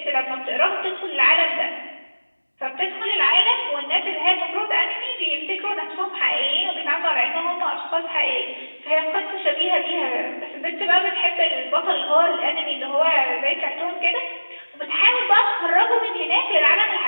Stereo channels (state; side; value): inverted; both; correlation -1.00